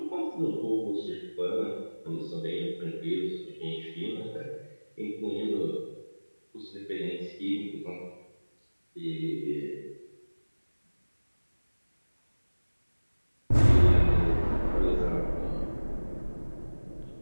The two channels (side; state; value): both; inverted; correlation -1.00